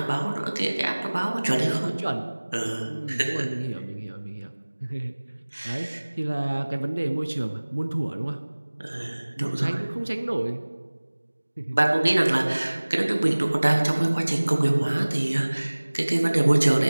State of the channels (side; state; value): both; inverted; correlation -1.00